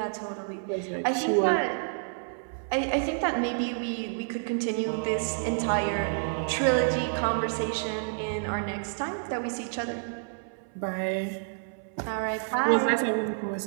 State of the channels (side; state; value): left; silent; 59 dB below the other